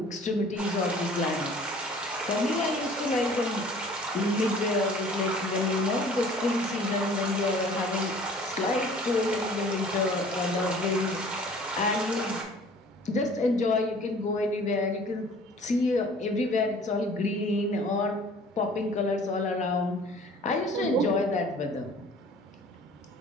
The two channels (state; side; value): normal; both; correlation 0.50